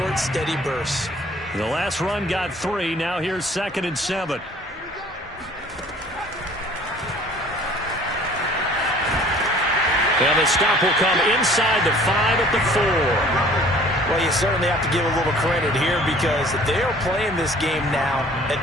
steady bursts. The last run got 3. Now here's 2nd and 7. And the stop will come inside the 5 at the 4. Well, you certainly have to give a little credit here because they are playing this game now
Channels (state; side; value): normal; both; correlation 0.52